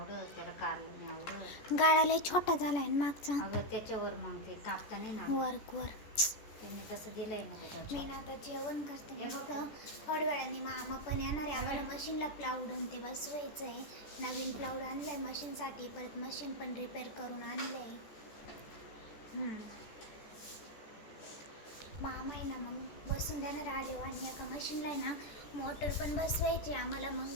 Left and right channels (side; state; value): right; late; 14 ms